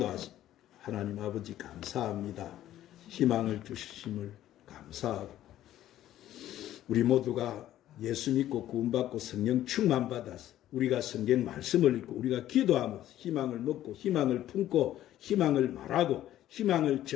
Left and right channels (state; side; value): quieter; right; 12.9 dB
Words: 하나님 아버지 감사합니다. 희망을 주심을 감사하고 우리 모두가 예수 믿고 구원받고 성령 충만 받아서 우리가 성경 말씀을 읽고 우리가 기도하면서 희망을 먹고 희망을 품고 희망을 말하고 희망을